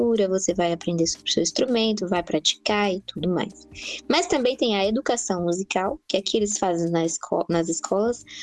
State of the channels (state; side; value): identical; both; correlation 1.00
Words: você vai aprender sobre o seu instrumento, vai praticar e tudo mais. Mas também tem a educação musical, que aqui eles fazem nas escolas,